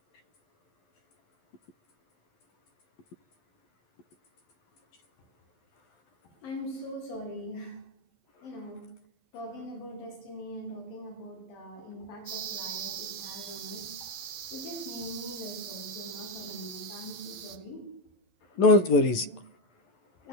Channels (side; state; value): right; late; 11 ms